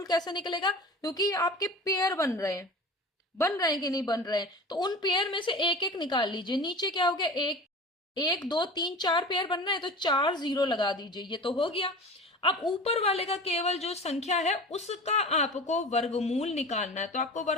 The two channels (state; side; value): normal; both; correlation 0.36